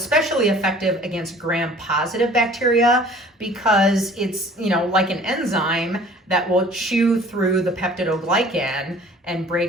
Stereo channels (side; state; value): both; normal; correlation 0.50